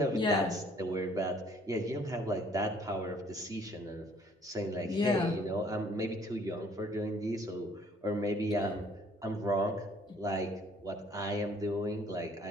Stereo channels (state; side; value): normal; both; correlation 0.60